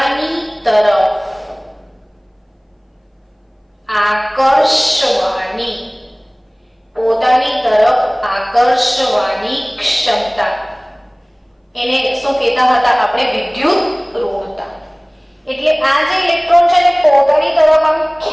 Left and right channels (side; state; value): both; identical; correlation 1.00